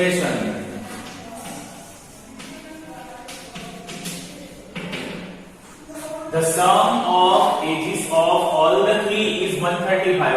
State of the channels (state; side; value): identical; both; correlation 1.00